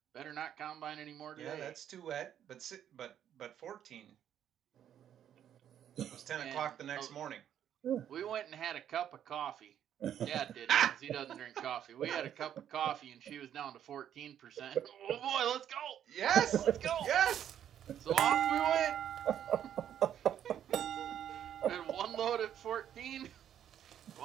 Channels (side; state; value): left; quieter; 10.0 dB